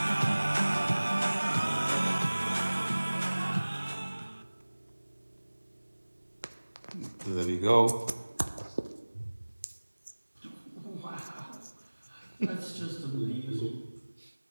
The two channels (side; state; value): both; inverted; correlation -1.00